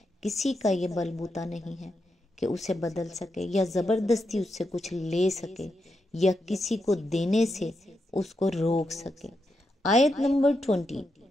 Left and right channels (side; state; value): both; normal; correlation 0.85